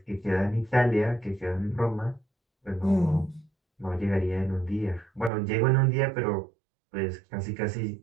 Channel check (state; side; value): drops out; left; at 5.3 s